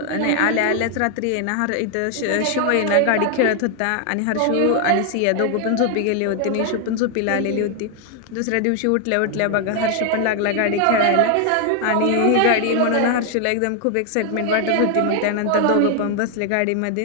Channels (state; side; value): different; both; correlation 0.00